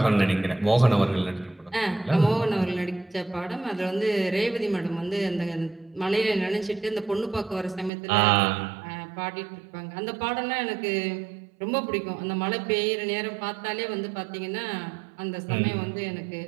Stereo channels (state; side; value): drops out; left; at 7.9 s